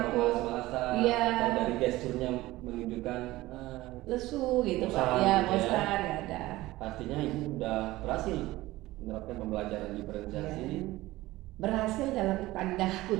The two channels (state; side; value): quieter; left; 18.0 dB